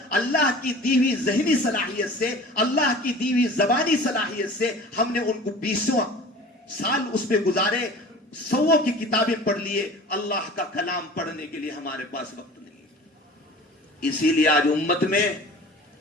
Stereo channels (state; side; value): normal; both; correlation 0.42